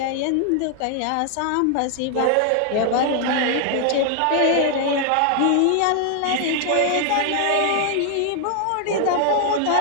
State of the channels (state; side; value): different; both; correlation 0.00